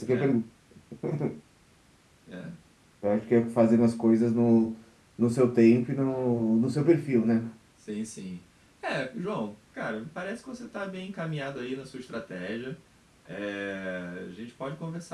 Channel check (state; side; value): identical; both; correlation 1.00